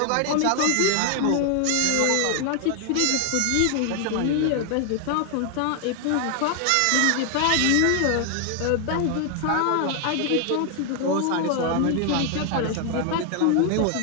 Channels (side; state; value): both; different; correlation 0.00